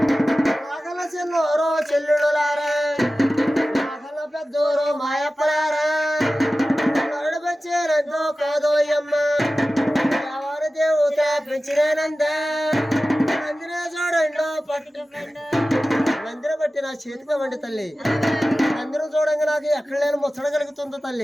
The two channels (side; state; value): both; normal; correlation 0.95